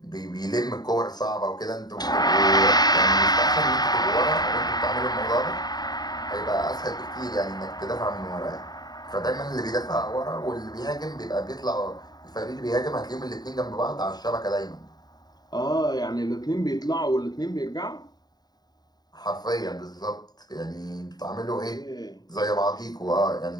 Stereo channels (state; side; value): late; right; 0.20 ms